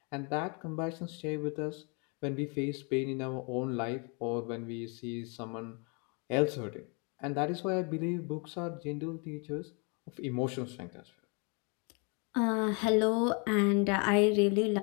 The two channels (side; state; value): right; quieter; 34.3 dB